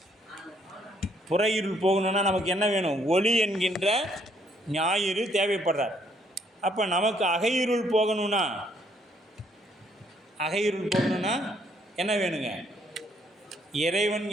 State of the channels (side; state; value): both; normal; correlation 0.68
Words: புற இருள் போகணுன்னா நமக்கு என்ன வேணும்? ஒளி என்கின்ற ஞாயிறு தேவைப்படுறார். அப்போ நமக்கு அகையிருள் போகணும்னா என்ன வேணுங்க? இறைவன்